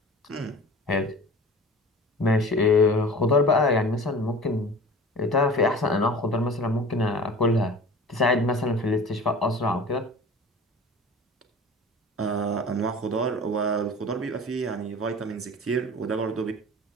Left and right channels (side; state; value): both; normal; correlation 0.40